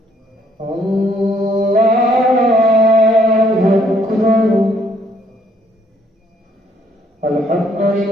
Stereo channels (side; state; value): both; normal; correlation 0.67